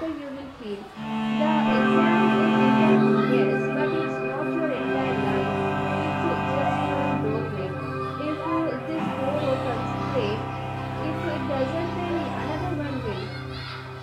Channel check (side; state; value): both; identical; correlation 1.00